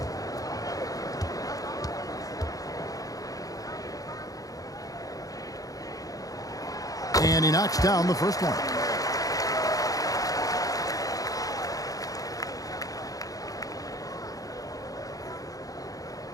And he knocks down the first one.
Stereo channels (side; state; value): right; late; 0.17 ms